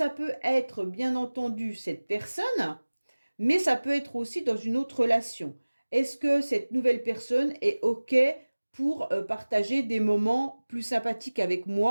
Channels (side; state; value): both; inverted; correlation -1.00